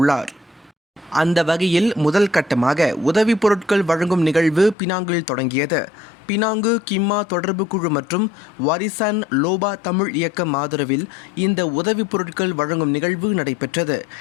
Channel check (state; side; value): drops out; right; at 4.8 s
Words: அந்த வகையில் முதல் கட்டமாக உதவி பொருட்கள் வழங்கும் நிகழ்வு பினாங்கில் தொடங்கியது. பினாங்கு கிம்மா தொடர்பு குழு மற்றும் வாரிசான் லோபா தமிழ் இயக்கம் ஆதரவில் இந்த உதவி பொருட்கள் வழங்கும் நிகழ்வு நடைபெற்றது.